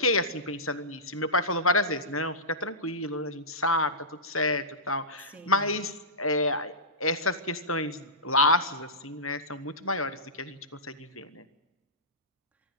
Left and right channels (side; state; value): both; normal; correlation -0.17